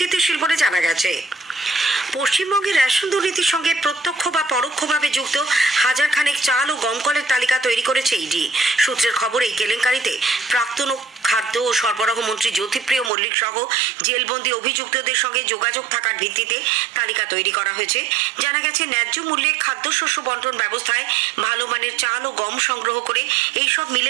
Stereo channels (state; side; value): drops out; left; at 13.1 s